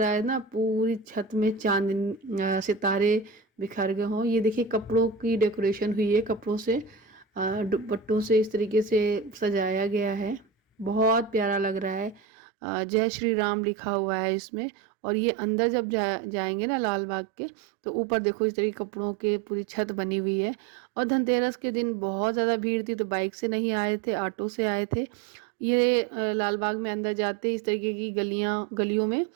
है ना पूरी छत में चांद सितारे बिखर गए हों। ये देखिए कपड़ों की डेकोरेशन हुई है, कपड़ों से दुपट्टों से इस तरीके से सजाया गया है, बहुत प्यारा लग रहा है। जय श्री राम लिखा हुआ है इसमें। और ये अंदर जब जाएंगे ना लाल बाग के, तो ऊपर देखो इस तरीके कपड़ों के पूरी छत बनी हुई है। और धनतेरस के दिन बहुत ज़्यादा भीड़ थी, तो बाइक से नहीं आए थे, ऑटो से आए थे। ये लाल बाग में अंदर जाते इस तरीके की गलियों में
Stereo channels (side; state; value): left; drops out; at 12.2 s